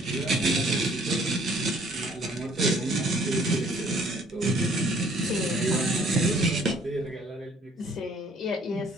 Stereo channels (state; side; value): normal; both; correlation 0.59